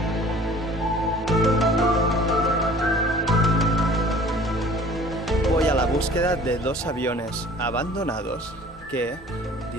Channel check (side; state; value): both; normal; correlation 0.48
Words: Voy a la búsqueda de dos aviones abandonados que,